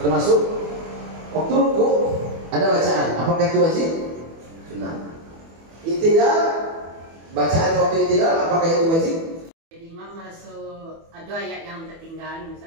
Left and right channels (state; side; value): late; left; 24 ms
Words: Termasuk waktu ruku ada bacaan, apakah itu wajib? Sunnah. I'tidal, bacaan waktu i'tidal apakah itu wajib? Imam masuk ada ayat yang tertinggal,